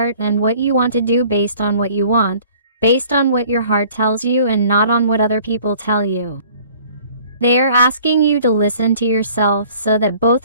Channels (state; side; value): inverted; both; correlation -0.53